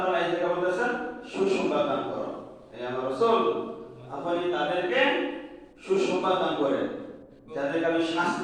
এই জায়গায় বলতেছেন সুসংবাদ দান করো। এই আমার রাসূল, আপনি তাদেরকে সুসংবাদ দান করেন যাদেরকে আমি শাস্তি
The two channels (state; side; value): identical; both; correlation 1.00